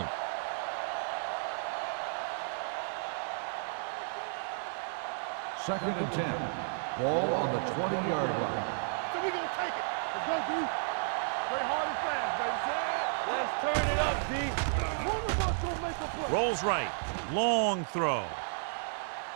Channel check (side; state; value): left; silent; digital silence